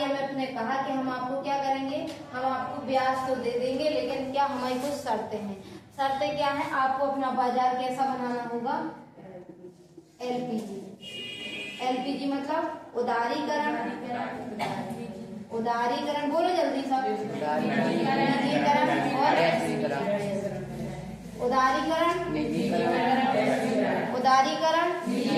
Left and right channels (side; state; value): both; identical; correlation 1.00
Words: ने कहा कि हम आपको क्या करेंगे, हम आपको ब्याज तो दे देंगे, लेकिन क्या हमारी कुछ शर्तें हैं। शर्तें क्या हैं? आपको अपना बाजार कैसा बनाना होगा? LPG मतलब उदारीकरण, बोलो जल्दी सब।